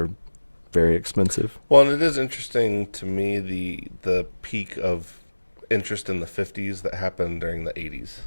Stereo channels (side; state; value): both; inverted; correlation -1.00